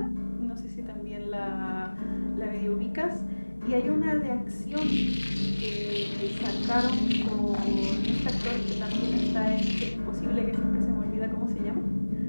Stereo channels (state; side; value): inverted; both; correlation -1.00